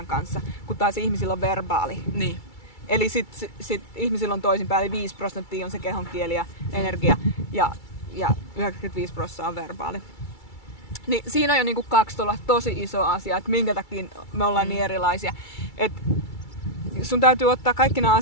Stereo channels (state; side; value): late; right; 2.3 ms